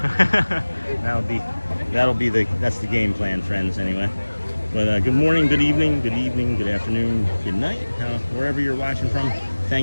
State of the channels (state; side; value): inverted; both; correlation -1.00